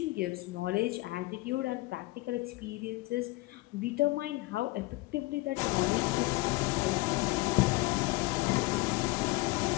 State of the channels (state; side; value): quieter; right; 21.7 dB